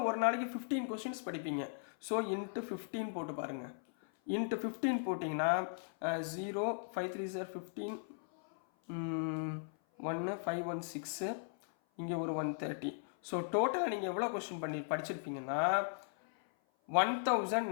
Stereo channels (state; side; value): silent; right; 53 dB below the other